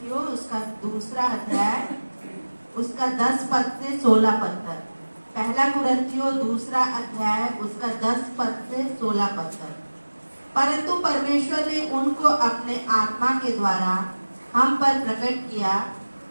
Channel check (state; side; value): inverted; both; correlation -1.00